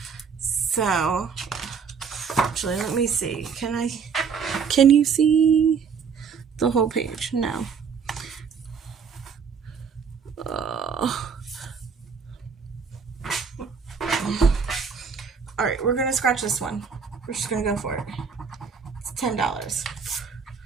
So, actually, let me see. Can you see the whole page? No. Alright, we're gonna scratch this one. We're just gonna go for it. It's $10.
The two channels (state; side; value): quieter; left; 6.2 dB